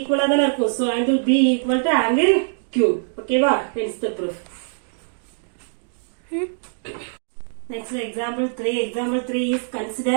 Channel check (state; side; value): silent; left; digital silence